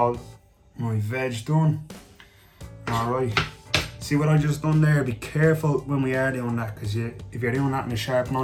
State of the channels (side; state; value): both; identical; correlation 1.00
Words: my veg done. Alright, see what I just done there? Be careful when we are doing that, because if you're doing that in a sharp